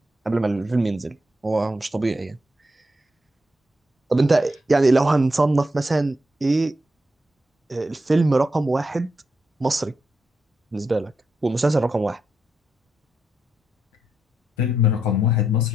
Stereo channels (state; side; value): normal; both; correlation 0.83